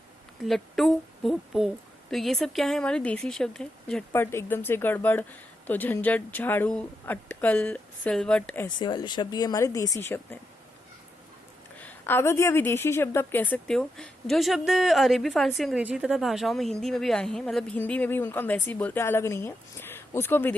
लट्टू भोपू। तो ये सब क्या है? हमारे देसी शब्द हैं। झटपट, एकदम से गड़बड़, तो झंझट, झाड़ू, अटकल, सिलवट, ऐसे वाले शब्द ये हमारे देसी शब्द हैं। आगत या विदेशी शब्द आप कह सकते हो, जो शब्द अरेबी, फारसी, अंग्रेजी तथा भाषाओं में हिंदी में भी आए हैं, मतलब हिंदी में भी उनको हम वैसे ही बोलते हैं, अलग नहीं है, उसको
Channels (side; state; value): both; normal; correlation 0.84